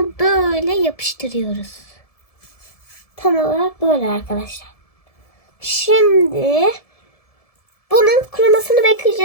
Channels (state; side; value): late; right; 1.7 ms